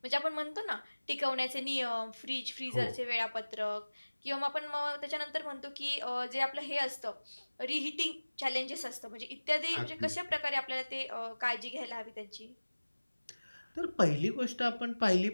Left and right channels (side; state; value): both; inverted; correlation -1.00